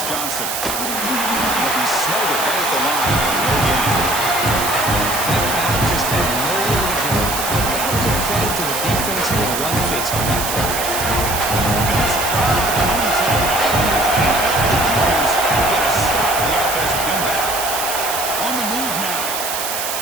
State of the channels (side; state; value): right; noise; hiss, 3 dB below the sound